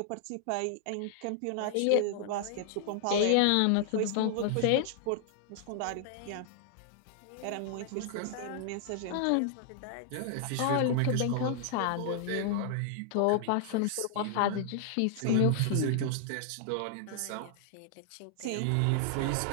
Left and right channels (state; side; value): different; both; correlation 0.00